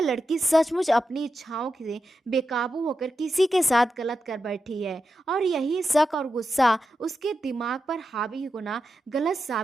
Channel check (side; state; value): both; normal; correlation 0.89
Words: लड़की सचमुच अपनी इच्छाओं से बेकाबू होकर किसी के साथ गलत कर बैठी है, और यही शक और गुस्सा उसके दिमाग पर हावी होना गलत